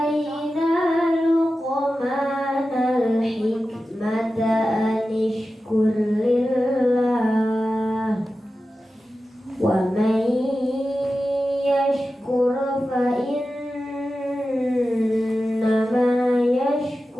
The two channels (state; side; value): normal; both; correlation 0.93